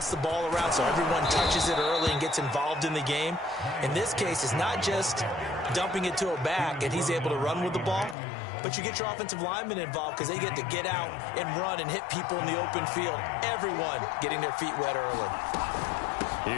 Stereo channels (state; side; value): drops out; right; at 8.2 s